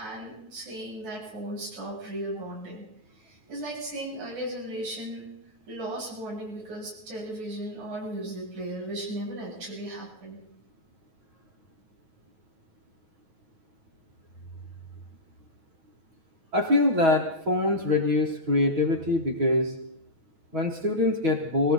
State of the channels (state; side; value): late; left; 9.3 ms